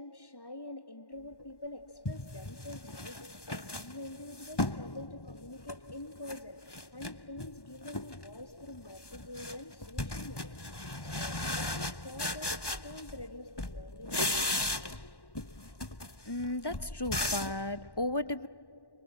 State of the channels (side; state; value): right; late; 1.1 ms